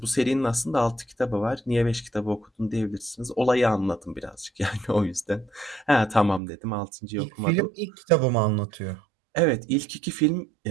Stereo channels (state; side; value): drops out; left; at 6.4 s